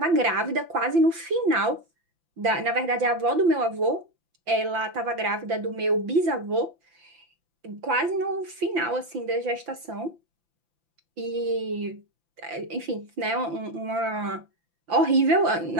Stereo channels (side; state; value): left; late; 5.9 ms